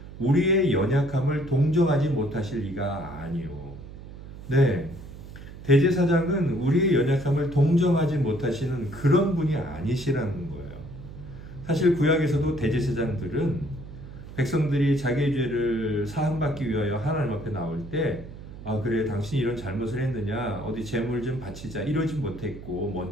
우리의 연약함을 동정하지 못하실 리가 아니요. 네. 대제사장은 우리의 연약함을 동정하지 못하시는 그런 분이 아니시라는 거예요. 사실 구약에서도 대제사장들은 백성들이 자기의 죄를 사함받기 위하여 하나님 앞에 나올 때 그래 당신이 이런 잘못을 했느냐 어디 제물 좀 바치자 이러지 못했고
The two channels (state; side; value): noise; right; hum, 14 dB below the sound